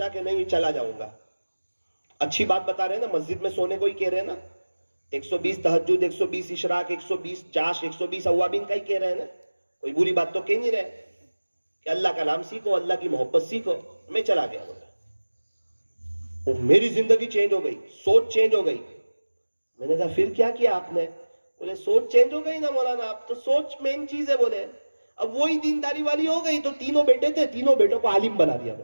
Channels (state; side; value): inverted; both; correlation -1.00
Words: کہ نہیں چلا جاؤں گا. اچھی بات بتا رہے ہیں نا, مسجد میں سونے کو ہی کہہ رہے ہیں نا, 120 تہجد, 120 اشراق, 120 چاش, 120 اوابین کا ہی کہہ رہے ہیں نا, کوئی بری بات تو کہہ نہیں رہے کہ اللہ کا نام سیکھو, اللہ کی محبت سیکھو. میں چلا گیا بولا, وہ میری زندگی چینج ہو گئی, سوچ چینج ہو گئی. میں نے کہا پھر کیا کیا آپ نے؟ بولے سوچ چینج ہو گئی نا مولانا, آپ تو سوچ مین چیز ہے. بولے اب وہی دینداری والی ہو گئی, تو 3 بیٹے تھے, 3 بیٹوں کو عالم بنا دیا.